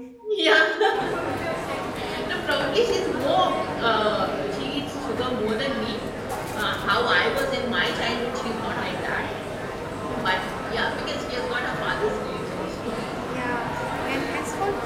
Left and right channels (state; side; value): identical; both; correlation 1.00